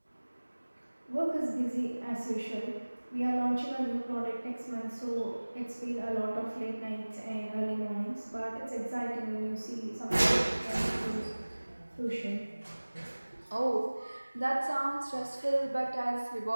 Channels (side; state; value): both; inverted; correlation -1.00